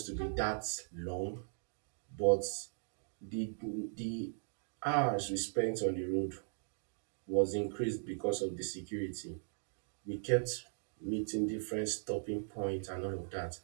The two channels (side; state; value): left; silent; digital silence